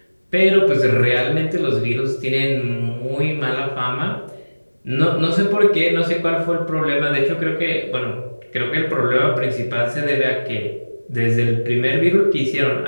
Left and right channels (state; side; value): inverted; both; correlation -1.00